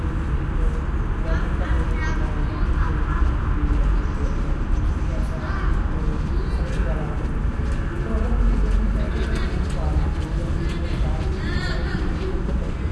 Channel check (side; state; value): both; identical; correlation 1.00